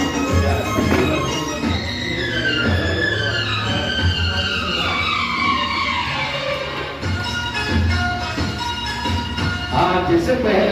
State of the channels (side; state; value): both; identical; correlation 1.00